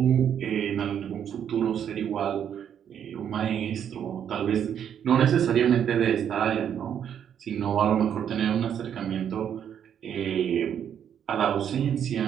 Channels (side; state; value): left; quieter; 8.9 dB